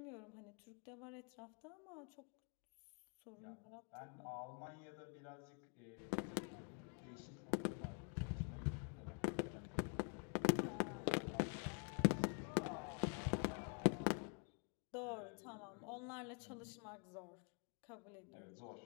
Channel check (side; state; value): right; quieter; 39.5 dB